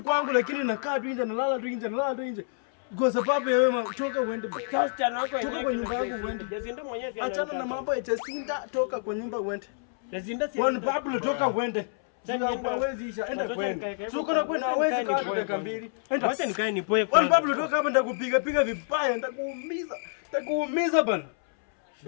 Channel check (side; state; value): right; silent; 60 dB below the other